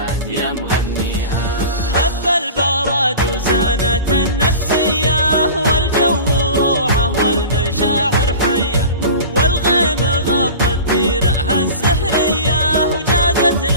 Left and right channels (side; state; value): both; inverted; correlation -0.35